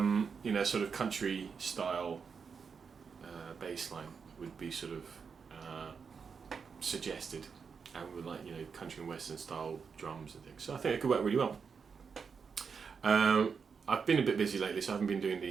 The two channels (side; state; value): left; quieter; 5.9 dB